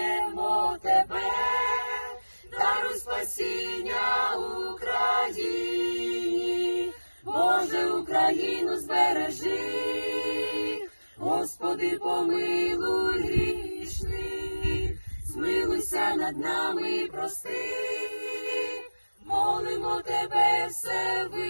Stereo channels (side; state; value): both; inverted; correlation -1.00